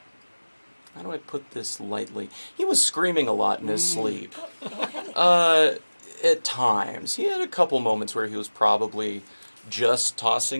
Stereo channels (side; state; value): both; inverted; correlation -1.00